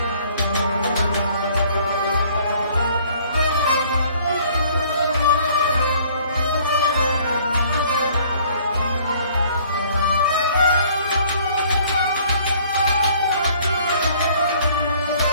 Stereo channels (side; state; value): both; inverted; correlation -0.57